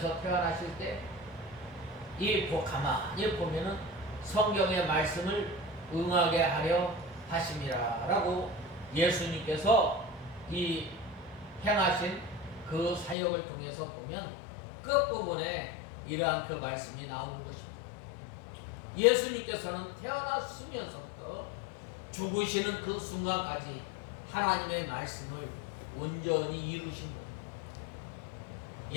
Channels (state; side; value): drops out; right; at 13.2 s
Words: 태어나실 때 이 가만히 보면은 성경의 말씀을 응하게 하려 하심이라라고 예수님께서 이 행하신 그 사역을 통해서 보면 끝부분에 이러한 그 말씀이 나오는 것입니다. 예수님께서는 태어났으면서부터 죽으시는 그 순간까지 하나님의 말씀을 온전히 이루신 겁니다.